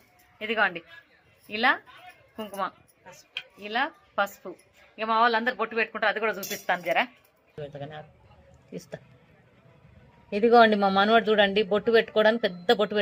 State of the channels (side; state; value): both; identical; correlation 1.00